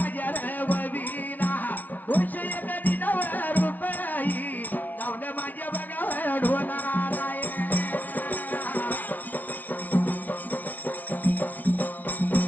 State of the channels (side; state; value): right; late; 0.078 ms